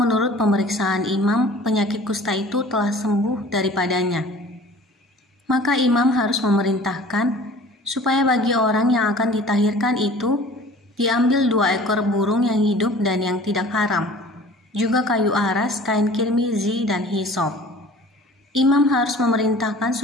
pemeriksaan imam penyakit kusta itu telah sembuh daripadanya. Maka imam harus memerintahkan supaya bagi orang yang akan ditahirkan itu diambil 2 ekor burung yang hidup dan yang tidak haram, juga kayu aras, kain kirmizi, dan hisop. Imam harus memerintahkan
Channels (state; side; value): normal; both; correlation 0.46